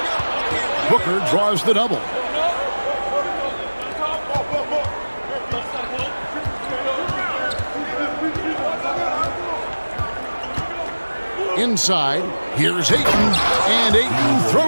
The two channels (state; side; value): inverted; both; correlation -1.00